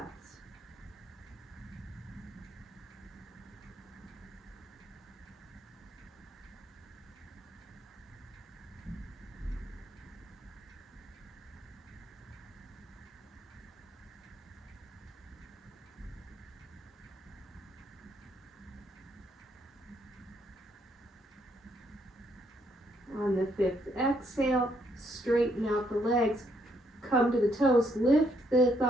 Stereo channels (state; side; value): normal; both; correlation 0.72